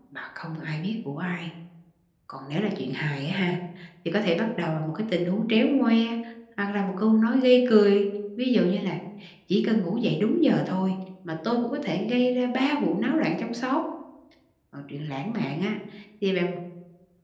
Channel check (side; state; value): both; identical; correlation 1.00